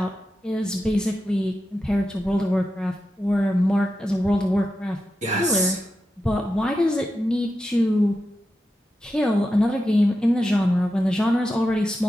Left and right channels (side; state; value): both; normal; correlation 0.90